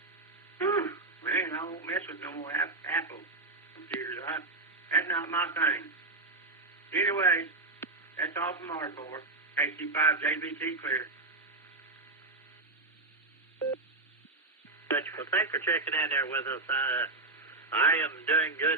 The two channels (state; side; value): quieter; left; 3.2 dB